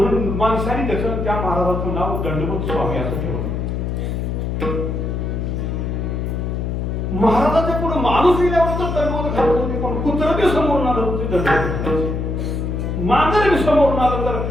माणसाने त्याचं त्या महाराजाचं नाव दंडवत स्वामी असं ठेवलं. महाराजाच्या पुढे माणूस गेल्यावर तर दंडवत घालत होते, पण कुत्रं बी समोरून आलं होते दंडवत घालायचे. मांजर बी समोरून आलं तर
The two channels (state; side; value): noise; left; hum, 2 dB below the sound